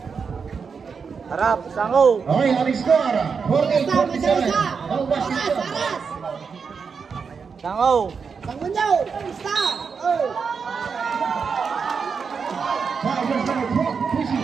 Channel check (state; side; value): quieter; left; 5.7 dB